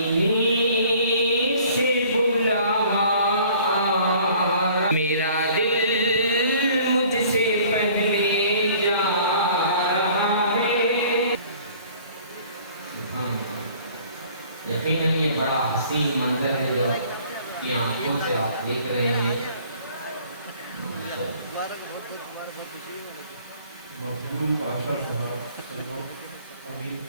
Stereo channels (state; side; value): inverted; both; correlation -0.53